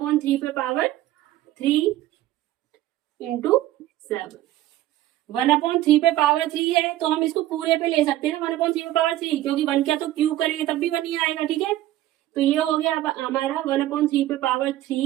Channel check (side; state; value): left; quieter; 14.6 dB